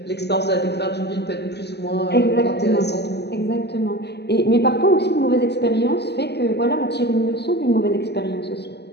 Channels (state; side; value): late; right; 0.49 ms